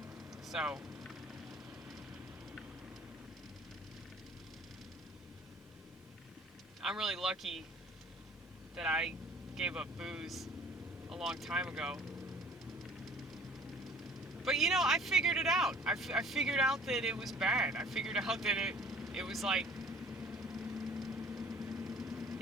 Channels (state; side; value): normal; both; correlation 0.52